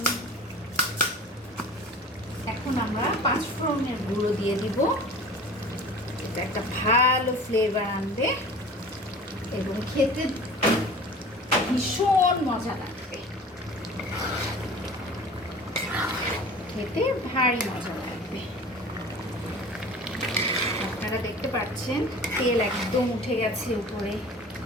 এখন আমরা 5 ফোড়নের গুঁড়ো দিয়ে দিব। এটা একটা ভালো ফ্লেভার আনবে এবং খেতে ভীষণ মজা লাগবে, খেতে ভারী মজা লাগবে। আপনারা দেখতে পাচ্ছেন তেল একদম উঠে গেছে উপরে।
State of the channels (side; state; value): both; normal; correlation 0.41